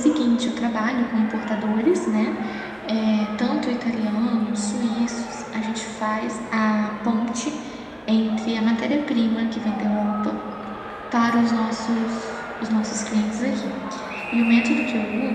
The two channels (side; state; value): both; identical; correlation 1.00